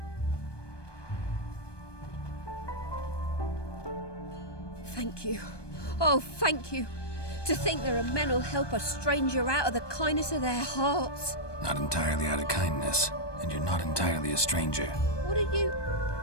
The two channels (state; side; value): late; right; 1.2 ms